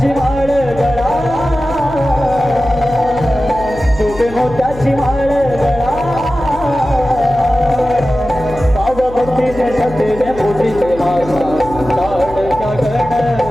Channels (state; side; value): noise; left; hum, 14 dB below the sound